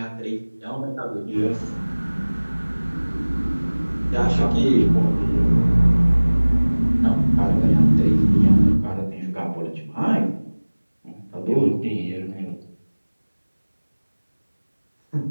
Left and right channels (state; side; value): inverted; both; correlation -1.00